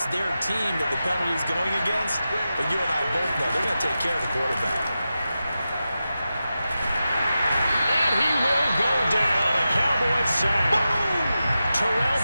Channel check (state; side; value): inverted; both; correlation -0.92